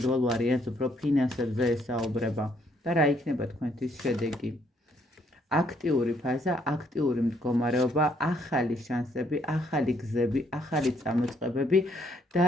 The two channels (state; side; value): normal; both; correlation 0.69